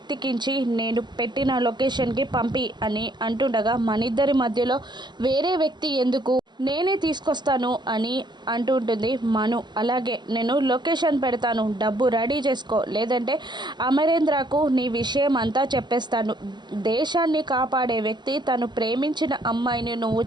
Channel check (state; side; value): late; left; 0.21 ms